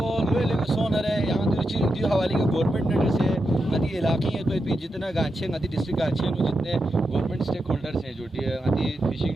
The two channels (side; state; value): both; normal; correlation 0.87